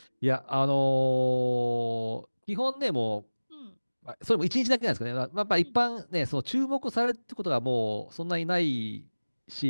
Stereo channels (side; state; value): both; inverted; correlation -1.00